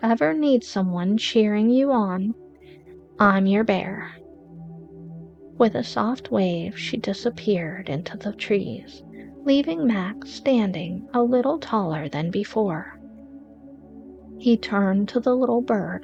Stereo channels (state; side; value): identical; both; correlation 1.00